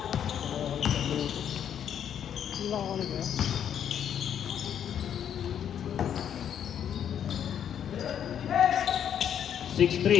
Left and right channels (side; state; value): right; quieter; 9.1 dB